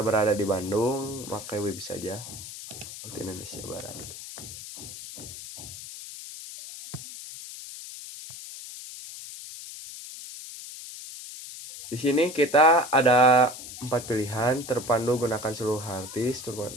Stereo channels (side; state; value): left; noise; hiss, 12 dB below the sound